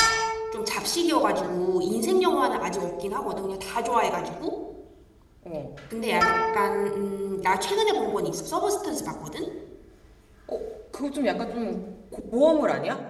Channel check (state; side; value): identical; both; correlation 1.00